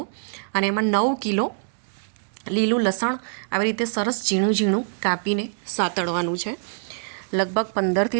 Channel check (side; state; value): left; silent; digital silence